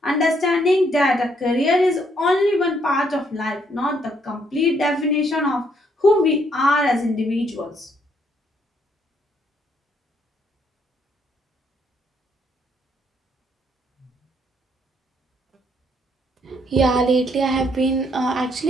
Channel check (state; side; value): normal; both; correlation 0.71